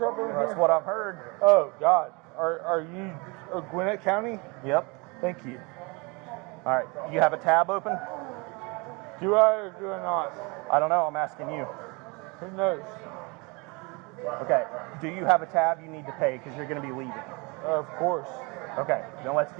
in here? That's what I've heard. Oh, God. Are you Gwinnett County? Yep. Thank you. All right. You have a tab open? Do I or do I not? I don't know. I'm asking you. Who knows? Okay. Do you have a tab you need to pay because you're going to be leaving? Of course. Okay. Then let's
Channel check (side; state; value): left; quieter; 28.5 dB